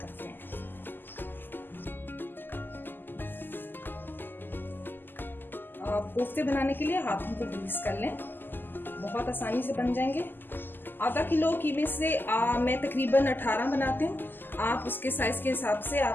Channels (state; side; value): late; right; 0.092 ms